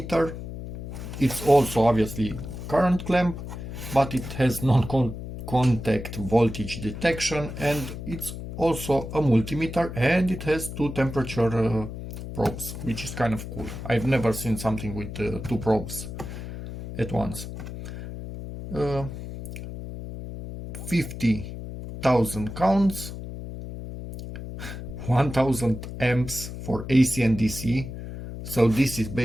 It's also obviously current clamp, but it has non-contact voltage detection, and it's also a multimeter, and it has two temperature probes, which is kind of cool. I've never seen something with two probes at once. 50,000 counts, 1000 amps for AC and DC. So this is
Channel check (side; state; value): left; noise; hum, 9 dB below the sound